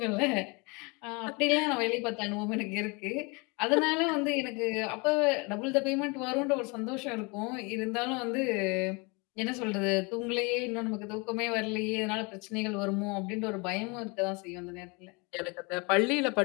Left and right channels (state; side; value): quieter; right; 29.3 dB